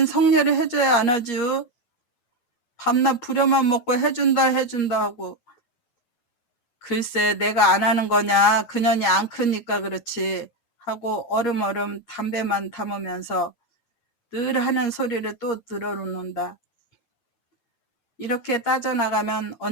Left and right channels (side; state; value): right; late; 8.5 ms